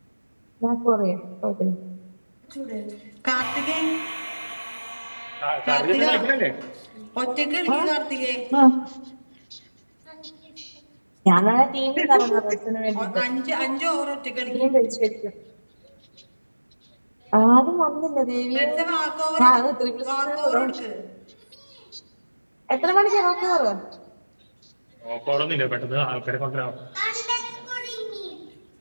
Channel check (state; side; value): inverted; both; correlation -1.00